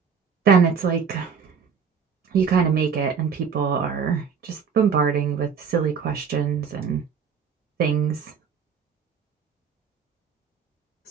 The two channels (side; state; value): left; quieter; 6.4 dB